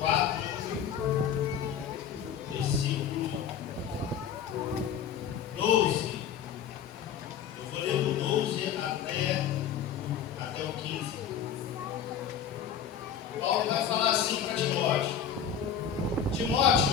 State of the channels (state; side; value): quieter; right; 8.3 dB